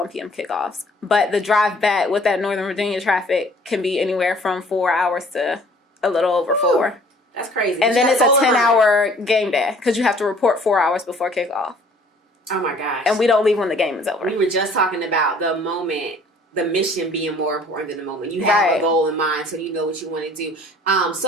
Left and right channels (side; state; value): both; normal; correlation 0.54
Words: p.m. kickoffs. But the drive back with that Northern Virginia traffic can be anywhere from 4 hours to a little over 4. That's crazy. And then it's a 10-hour game day, because you have to report 4 hours before kickoff. Oh, my gosh. And we don't leave when the game is over. We were just talking about the moment, the mission being more important than the moment. You have a goal in mind, so you know what you want to do.